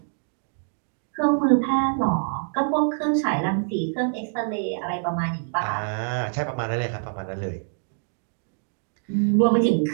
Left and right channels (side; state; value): left; silent; digital silence